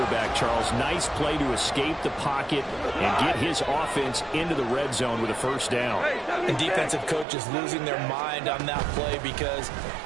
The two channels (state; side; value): drops out; left; at 7.2 s